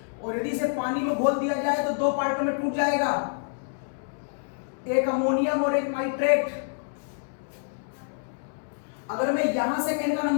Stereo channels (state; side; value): silent; right; digital silence